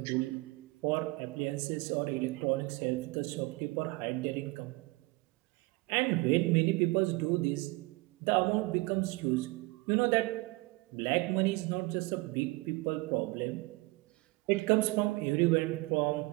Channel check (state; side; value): quieter; left; 23.2 dB